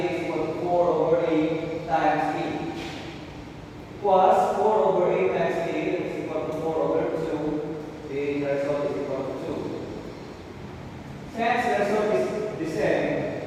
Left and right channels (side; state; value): both; identical; correlation 1.00